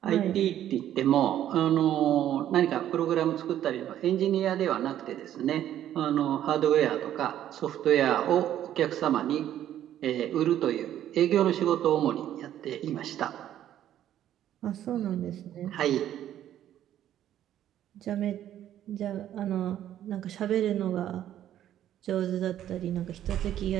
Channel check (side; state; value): left; quieter; 11.5 dB